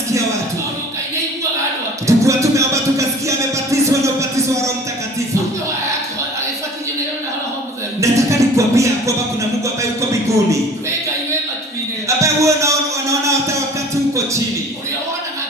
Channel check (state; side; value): normal; both; correlation 0.46